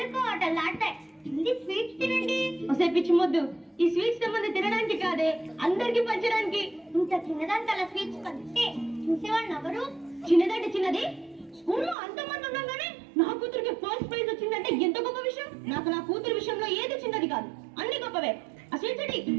కోటలు ఆడతాయి. ఇది స్వీట్స్ తినండి. ఒసే పిచ్చి మొద్దు, ఈ స్వీట్స్ సంబంధం తినడానికి కాదే, అందరికి పంచడానికి. ఇంత చిన్నదానికి అలా స్వీట్స్ పంచితే చూసేవాళ్ళు ఎవరు? చిన్నదంటే చిన్నది, స్కూల్లో అంతమంది ఉండగానే నా కూతురికి ఫస్ట్ ప్రైజ్ వచ్చిందంటే ఎంత గొప్ప విషయం. నాకు నా కూతురు విషయంలో ఏది చిన్నది కాదు, అన్ని గొప్పవే. ఆ స్వీట్స్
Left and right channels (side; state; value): left; drops out; at 12.0 s